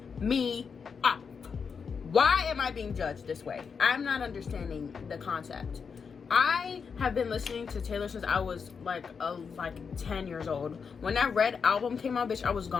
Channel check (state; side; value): quieter; right; 5.9 dB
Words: me off. Why am I being judged this way? I'm not understanding the concept. I have been listening to Taylor since I was like 10 years old. When that Red album came out, bitch, I was